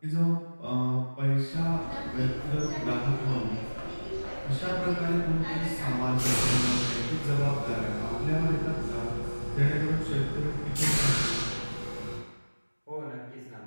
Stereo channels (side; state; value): both; inverted; correlation -1.00